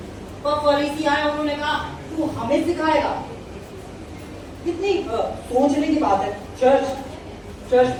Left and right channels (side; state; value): both; identical; correlation 1.00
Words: पर फरीसी आए, उन्होंने कहा तू हमें सिखाएगा? कितनी सोचने की बात है। चर्च